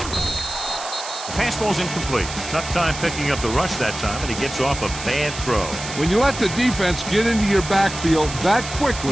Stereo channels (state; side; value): noise; right; hiss, 10 dB below the sound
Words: The pass ball's incomplete. Tough time picking up the rush that time, and he gets off a bad throw. When you let the defense get into your backfield that